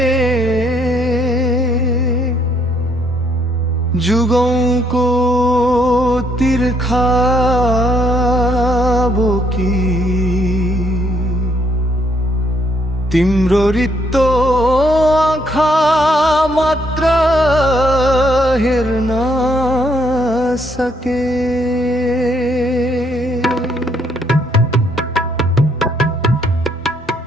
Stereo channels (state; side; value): normal; both; correlation 0.70